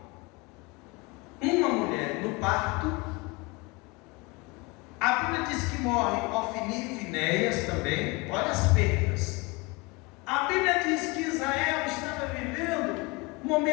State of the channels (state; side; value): quieter; right; 26.3 dB